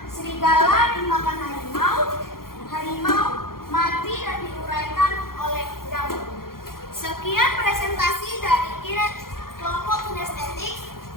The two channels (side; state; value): right; late; 0.92 ms